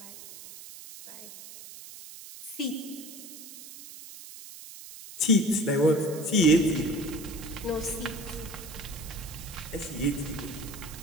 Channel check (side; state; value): right; noise; hiss, 14 dB below the sound